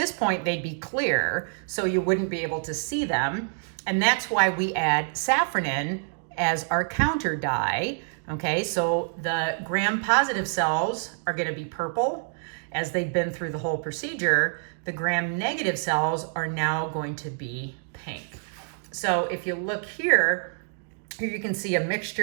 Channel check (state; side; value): silent; left; digital silence